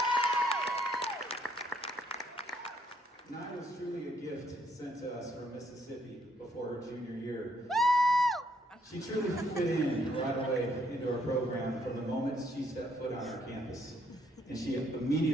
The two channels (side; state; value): both; normal; correlation 0.69